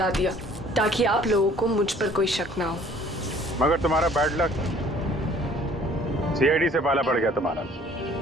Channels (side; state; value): both; normal; correlation 0.55